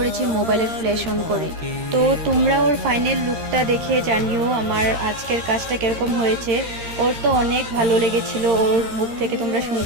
মোবাইলের ফ্ল্যাশ অন করে। তো তোমরা ওর ফাইনাল লুকটা দেখে জানিও আমার আজকের কাজটা কিরকম হয়েছে। ওর তো অনেক ভালো লেগেছিল, ওর মুখ থেকে তোমরা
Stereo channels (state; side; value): late; left; 13 ms